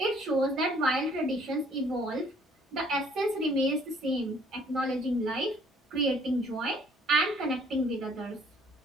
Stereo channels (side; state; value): both; normal; correlation 0.60